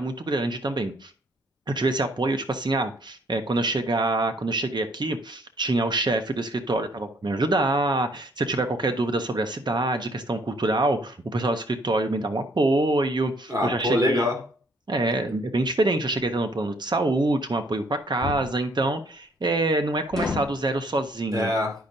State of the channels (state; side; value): normal; both; correlation 0.64